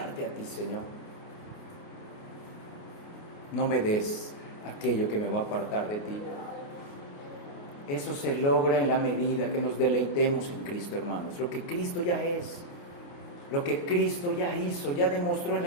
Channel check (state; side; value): late; right; 29 ms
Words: a ti, Señor. No me des aquello que me va a apartar de ti. Eso se logra en la medida que nos deleitemos en Cristo, hermanos. Lo que Cristo ya es. lo que Cristo ya hizo, ya demostró en